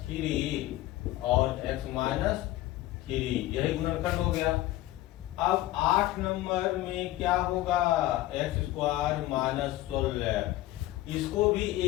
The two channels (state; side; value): quieter; right; 16.1 dB